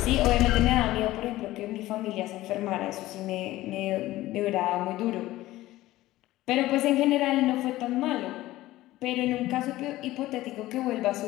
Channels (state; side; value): quieter; right; 16.6 dB